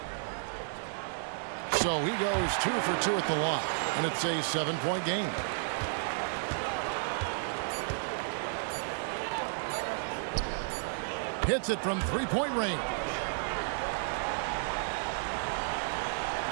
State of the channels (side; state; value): left; silent; 56 dB below the other